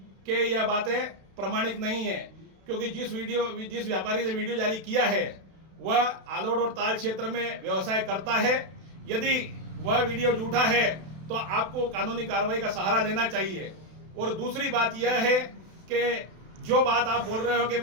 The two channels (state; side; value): late; left; 32 ms